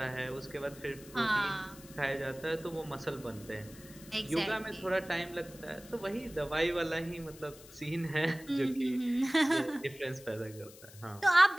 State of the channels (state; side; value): noise; left; hiss, 20 dB below the sound